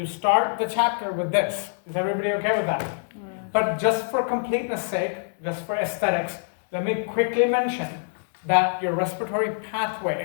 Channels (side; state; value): right; silent; digital silence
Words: start the chapter with this. Is everybody okay with that? Yeah. But just for completeness sake, just for aesthetics, let me quickly mention that your respiratory